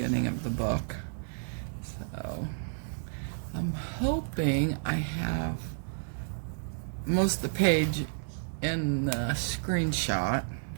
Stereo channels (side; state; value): left; silent; 57 dB below the other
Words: of the book. So I'm hoping I have most of the page in the screenshot